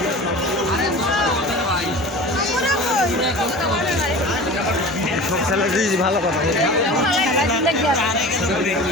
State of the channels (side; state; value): both; normal; correlation 0.37